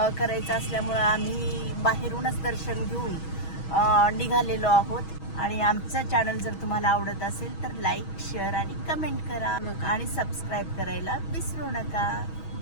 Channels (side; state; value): right; late; 6.2 ms